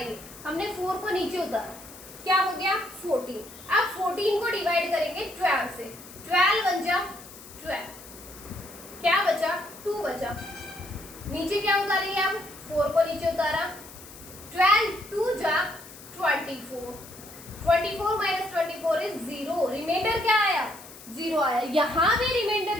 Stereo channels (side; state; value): left; noise; hiss, 17 dB below the sound